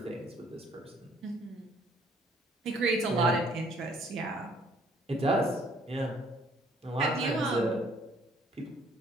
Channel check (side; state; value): both; normal; correlation 0.61